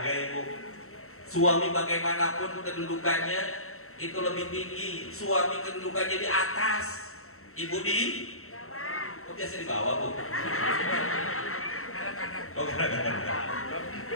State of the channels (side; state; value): right; late; 0.63 ms